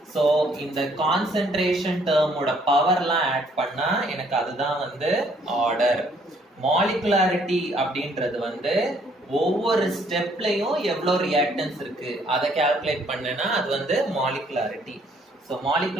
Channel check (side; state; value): both; normal; correlation 0.65